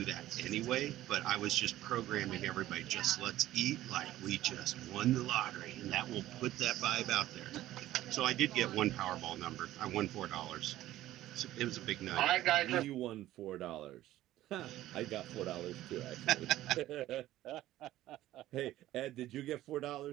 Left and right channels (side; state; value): left; quieter; 14.6 dB